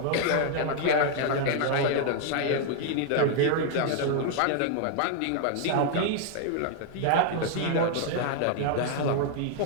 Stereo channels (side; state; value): both; different; correlation 0.00